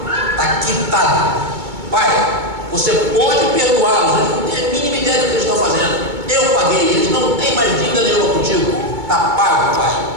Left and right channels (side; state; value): left; late; 2.2 ms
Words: está quitado. Pai, você pode perdoá-los, eles não têm a mínima ideia do que eles estão fazendo. Eu paguei, eles não têm mais dívida nenhuma contigo. Está pago, pai,